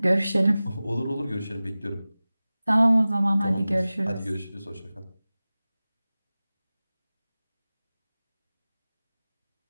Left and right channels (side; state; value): both; inverted; correlation -0.97